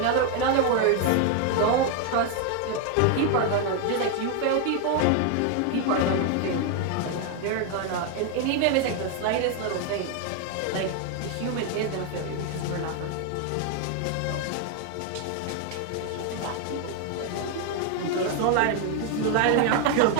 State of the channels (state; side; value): different; both; correlation 0.01